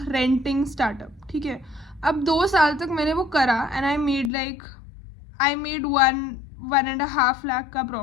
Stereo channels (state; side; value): drops out; right; at 4.3 s